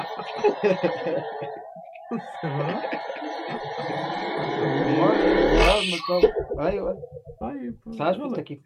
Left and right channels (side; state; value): both; identical; correlation 1.00